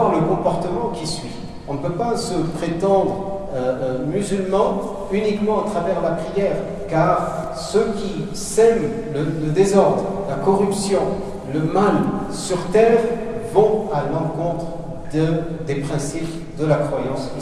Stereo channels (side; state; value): both; identical; correlation 1.00